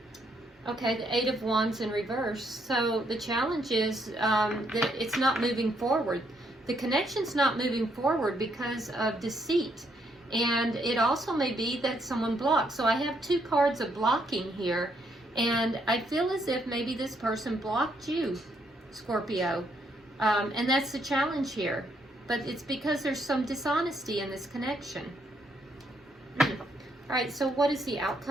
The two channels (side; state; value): both; normal; correlation 0.73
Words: Okay, the Eight of Wands in reverse. So the challenge is that it's not moving forward. The connection's not moving forward because of deceit. And it also may be that someone blocked. So I have two cards of blocking here. And I feel as if maybe this person blocked you, Scorpio. And that's the challenge here. But it's because there's some dishonesty in this connection. All right, so what is the